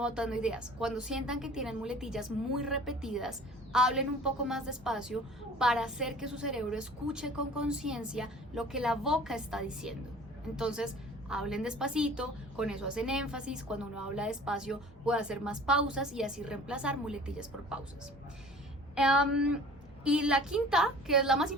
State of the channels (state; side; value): normal; both; correlation 0.46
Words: ideas. Cuando sientan que tienen muletillas muy repetidas, hablen un poco más despacio para hacer que su cerebro escuche con conciencia lo que la boca está diciendo. Entonces, hablen despacito, con eso hacen énfasis. Cuando uno habla despacio puede hacer más pausas y así reemplazar muletillas por pausas. Y la quinta, que es la más